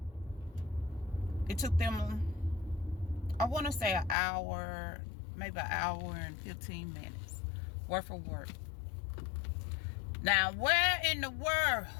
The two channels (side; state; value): right; drops out; at 4.2 s